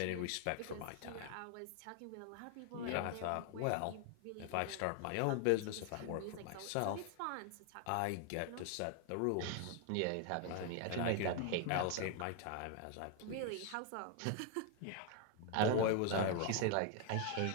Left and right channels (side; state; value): both; different; correlation 0.00